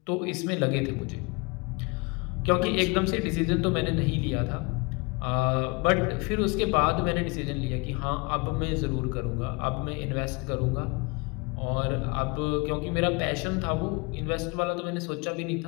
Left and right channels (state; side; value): quieter; right; 29.1 dB